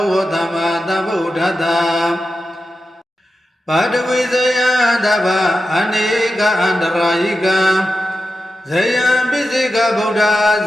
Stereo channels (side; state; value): both; normal; correlation 0.91